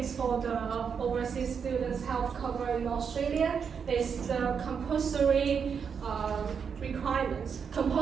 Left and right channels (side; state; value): left; quieter; 6.6 dB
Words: for the overseas students health cover in Australia is the compulsory requirements,